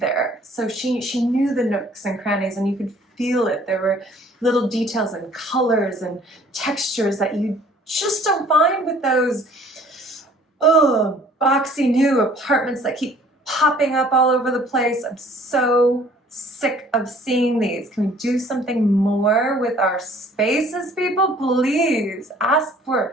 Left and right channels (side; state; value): both; normal; correlation 0.55